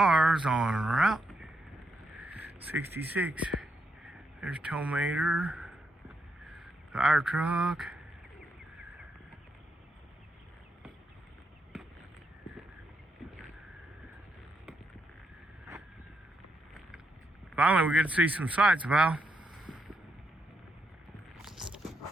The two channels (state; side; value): normal; both; correlation 0.80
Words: on Route 66. There's Tomater, fire truck. Finally, we get to see some sights, Val.